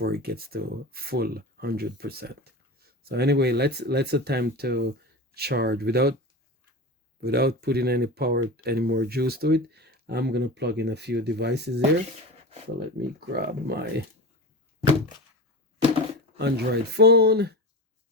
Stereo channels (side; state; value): both; normal; correlation 0.27